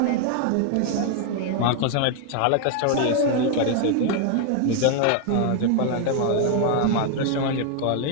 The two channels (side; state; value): both; different; correlation 0.00